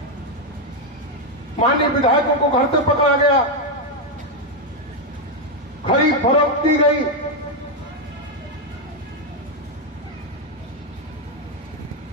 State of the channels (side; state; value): both; normal; correlation 0.03